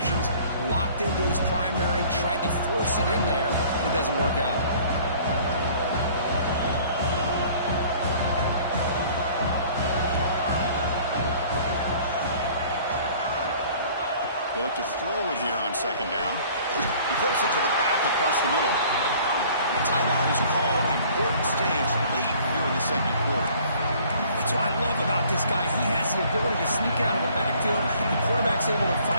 locked into his primary, tried to force it in there, and it doesn't work out. They look to throw it here on second down. He flips it to the back across the middle. The timeout is called. Important stage late here in the second quarter. That's what I love about this guy. He has the ability to sneak out of the backfield. The quarterback's able to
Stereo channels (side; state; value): both; inverted; correlation -0.53